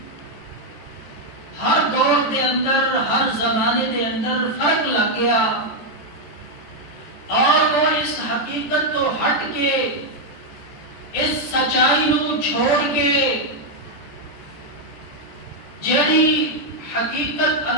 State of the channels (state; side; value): late; right; 14 ms